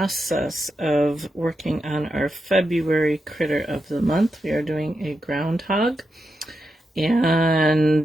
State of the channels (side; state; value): both; normal; correlation 0.87